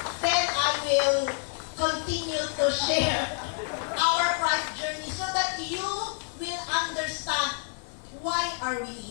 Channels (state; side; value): silent; right; 58 dB below the other